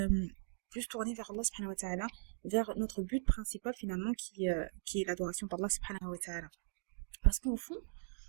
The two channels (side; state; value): left; silent; digital silence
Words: plus tournée vers Allah subhanahu wa ta'ala, vers notre but principal finalement qui est l'adoration d'Allah subhanahu wa ta'ala. Parce qu'au fond,